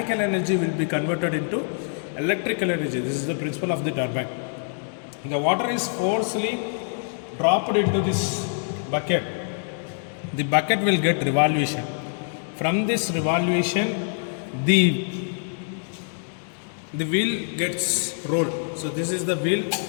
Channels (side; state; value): right; silent; digital silence